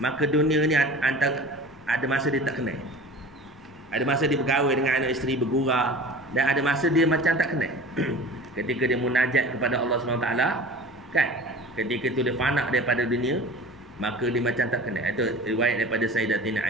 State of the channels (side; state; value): both; normal; correlation 0.39